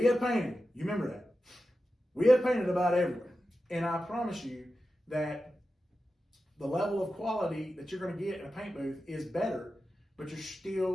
have painted, you remember that. We have painted about everywhere. And I promise you that the level of quality that you're going to get in a paint booth is better, but you're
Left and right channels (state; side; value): normal; both; correlation 0.92